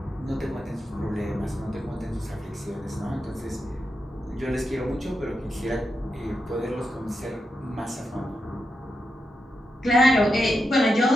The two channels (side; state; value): both; normal; correlation 0.86